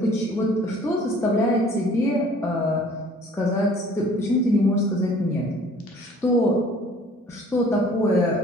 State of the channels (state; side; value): normal; both; correlation 0.52